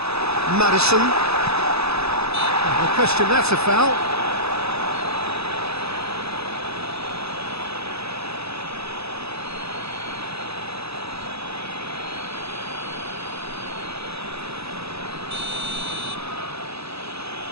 Maddison. No question, that's a foul.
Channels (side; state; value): left; late; 0.79 ms